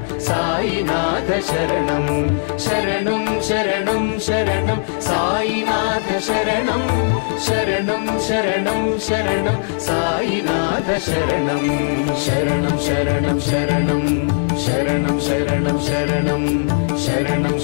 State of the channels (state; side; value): silent; right; 61 dB below the other